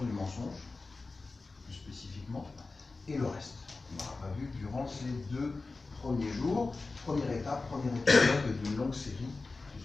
du mensonge, plus spécifiquement, et le reste. On n'aura pas vu durant ces 2 premiers jours. Première étape, premier épisode d'une longue série,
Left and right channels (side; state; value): right; quieter; 3.7 dB